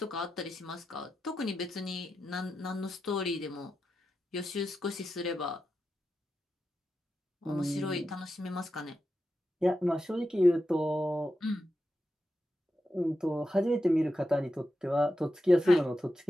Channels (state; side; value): normal; both; correlation 0.89